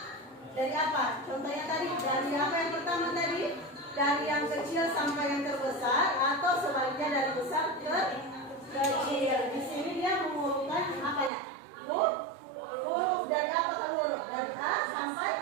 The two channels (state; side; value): drops out; left; at 11.3 s